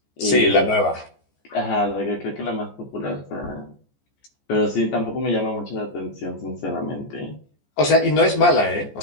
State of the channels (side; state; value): right; late; 14 ms